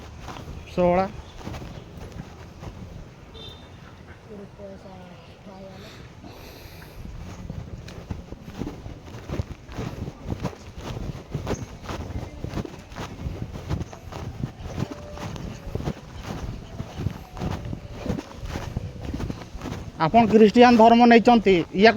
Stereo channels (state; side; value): identical; both; correlation 1.00